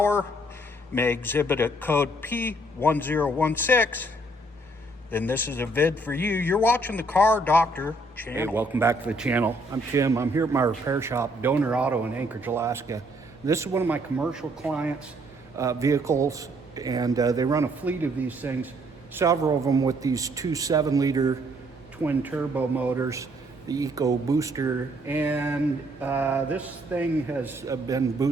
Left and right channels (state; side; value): normal; both; correlation 0.67